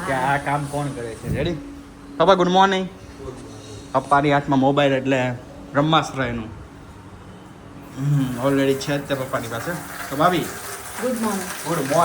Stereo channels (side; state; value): both; identical; correlation 1.00